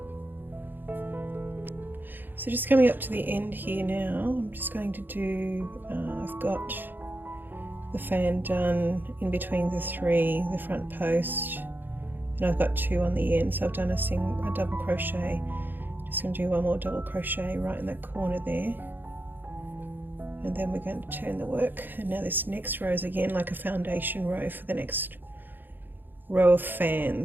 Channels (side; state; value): left; late; 0.091 ms